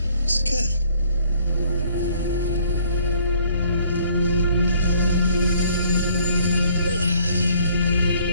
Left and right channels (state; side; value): inverted; both; correlation -0.61